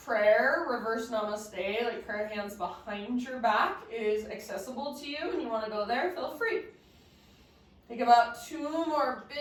prayer, reverse namaste, like prayer hands behind your back, is accessible to you and you want to go there, feel free. Take about 2 more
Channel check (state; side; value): identical; both; correlation 1.00